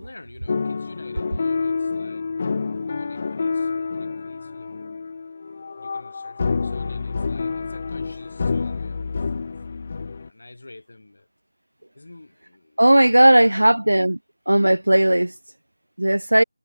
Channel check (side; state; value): both; inverted; correlation -0.97